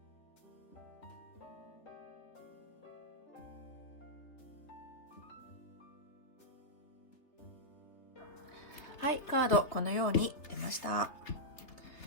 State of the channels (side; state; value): right; late; 3.2 ms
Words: はい、カードこのように出ました。